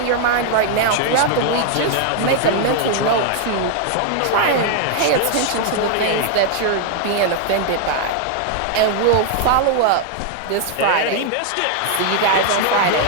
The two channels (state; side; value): different; both; correlation 0.00